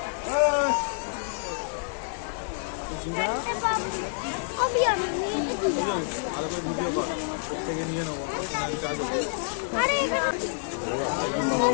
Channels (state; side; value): silent; right; 59 dB below the other